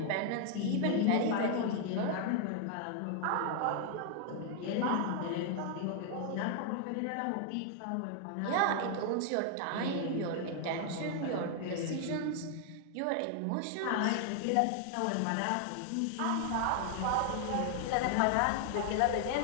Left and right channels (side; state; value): both; different; correlation 0.00